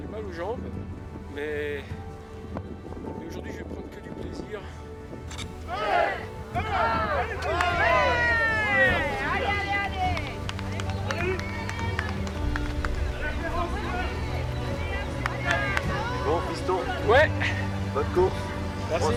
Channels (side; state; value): both; identical; correlation 1.00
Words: mal aux jambes, mais aujourd'hui je vais prendre que du plaisir. Bon, piston. Ouais. Bonne course. Merci. Prends